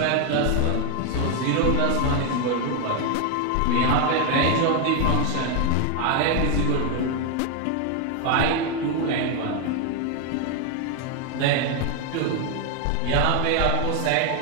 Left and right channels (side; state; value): both; different; correlation 0.01